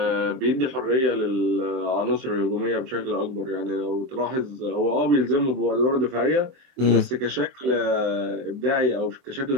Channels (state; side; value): late; left; 23 ms